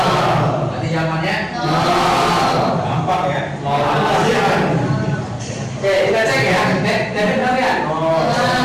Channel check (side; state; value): both; identical; correlation 1.00